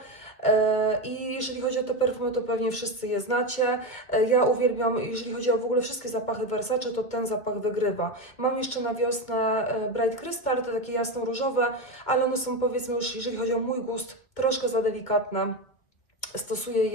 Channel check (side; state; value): right; late; 2.3 ms